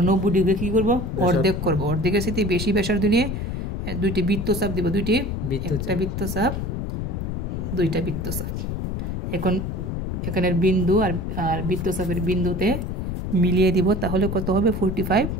90 ডিগ্রি কী করবো? অর্ধেক করবো। অর্ধেকের সাথে বেশি ব্যাসার্ধ নিয়ে 2টি বৃত্তচাপ দিব। একটা বৃত্তচাপ, 2টা বৃত্তচাপ। এখন এখানের বিন্দু আর বৃত্তচাপের বিন্দুতে মিলিয়ে দিব। তাহলে কত হবে? 45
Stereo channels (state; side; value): noise; left; rumble, 3 dB below the sound